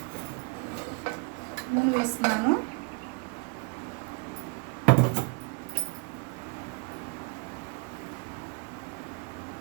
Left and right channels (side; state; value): left; quieter; 31.9 dB